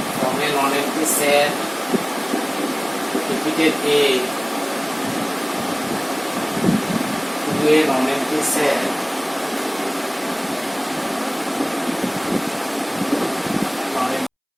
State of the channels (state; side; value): identical; both; correlation 1.00